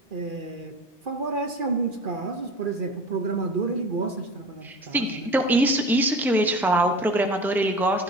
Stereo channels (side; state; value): both; normal; correlation 0.38